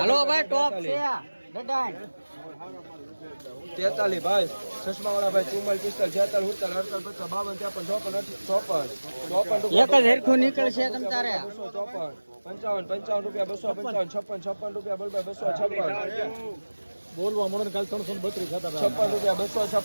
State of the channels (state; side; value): inverted; both; correlation -1.00